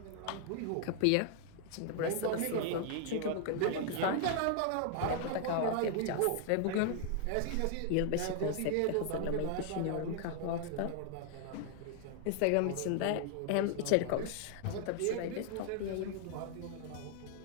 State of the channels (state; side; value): different; both; correlation 0.00